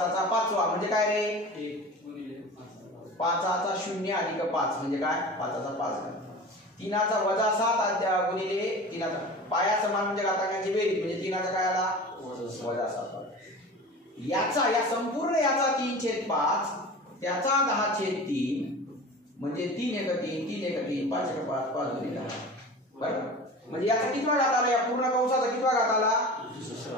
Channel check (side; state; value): both; normal; correlation 0.35